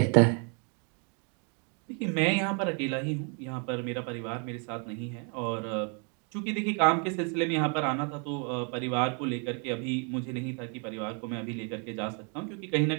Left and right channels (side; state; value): left; quieter; 37.9 dB